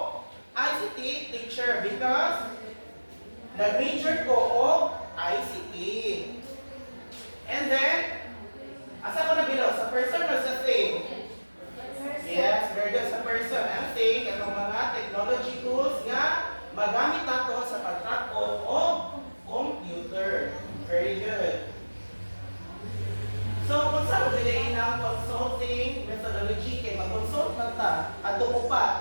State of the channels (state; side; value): inverted; both; correlation -1.00